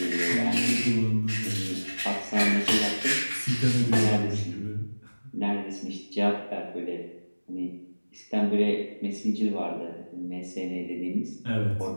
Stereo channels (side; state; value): both; inverted; correlation -1.00